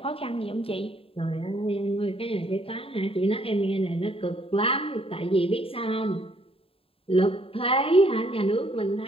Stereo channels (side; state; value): right; late; 0.27 ms